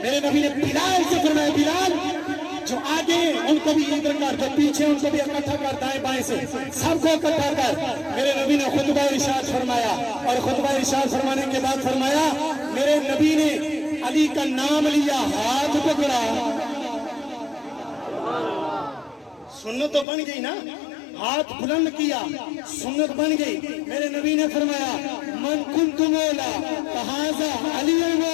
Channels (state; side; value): drops out; right; at 20.1 s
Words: میرے نبی نے بلال سے فرمایا، بلال جو آگے ان کو بھی ادھر کر، جو پیچھے ان کو بھی اکٹھا کر، دائیں بائیں سے سب کو اکٹھا کر۔ میرے نبی نے خطبہ ارشاد فرمایا، اور خطبہ ارشاد فرمانے کے بعد فرمایا میرے نبی نے علی کا نام لیا، ہاتھ پکڑا۔ سنت تو بن گئی نا، ہاتھ بلند کیا، سنت بن گئی۔ میرے نبی نے فرمایا من کنت مولا فہذا علی